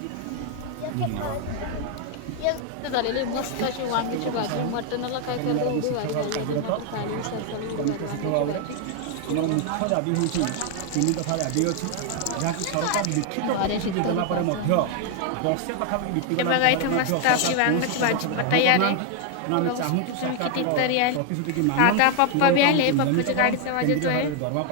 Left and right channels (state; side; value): different; both; correlation 0.00